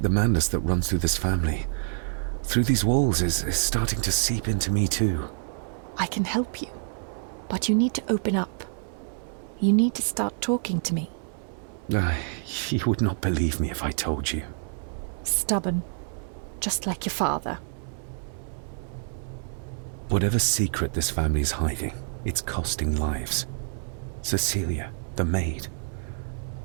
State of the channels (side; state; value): left; silent; digital silence